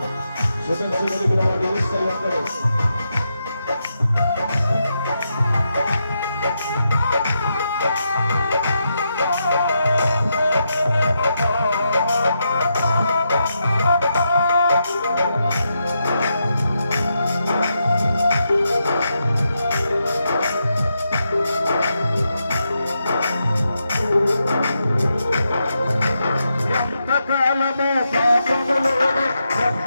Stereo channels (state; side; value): inverted; both; correlation -0.84